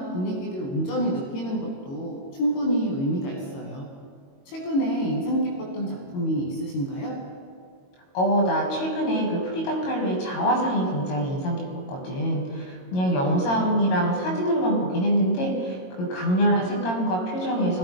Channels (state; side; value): late; right; 22 ms